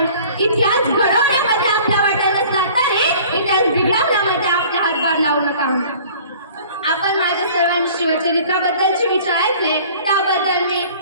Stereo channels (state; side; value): inverted; both; correlation -0.48